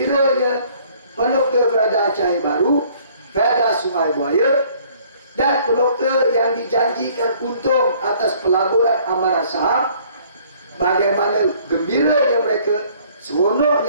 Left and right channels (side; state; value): both; inverted; correlation -0.58